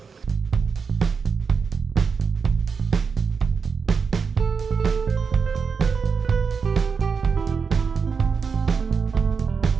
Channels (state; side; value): quieter; left; 5.5 dB